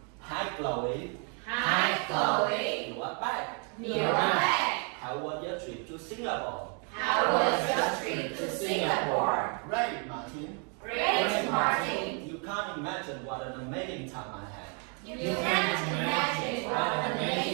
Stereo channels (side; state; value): left; quieter; 38.0 dB